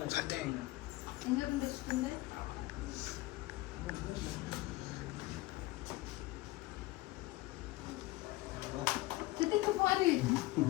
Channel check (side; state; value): right; quieter; 19.0 dB